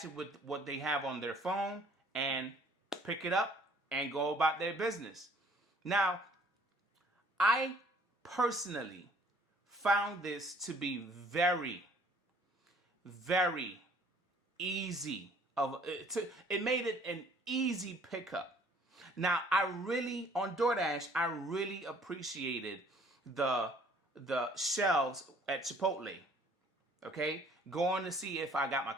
it with what they have on their phone and pick it up and go about their business. Now, I personally found this to be very, very easy. It made it an easy pickup. Now, on DoorDash, I really appreciated the shelves at Chipotle. Okay? Going to see if I got my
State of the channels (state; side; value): normal; both; correlation 0.57